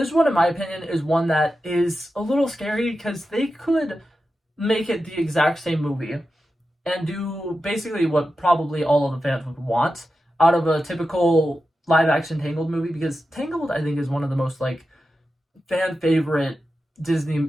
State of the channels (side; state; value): both; normal; correlation 0.91